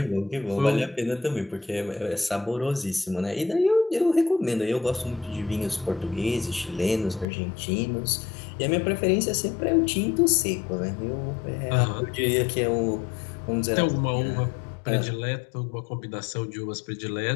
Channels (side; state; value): right; drops out; at 7.2 s